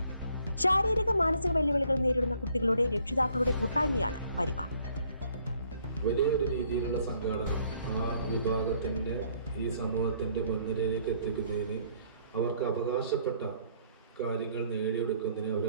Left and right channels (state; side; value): inverted; both; correlation -0.63